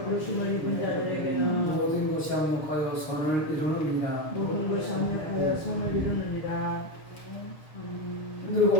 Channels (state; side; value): late; right; 6.7 ms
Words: 부르심을 입은 자들에게는 모든 것이 합력하여 선을 이루느니라. 모든 것이 합력하여 선을 이루느니라. 힘들고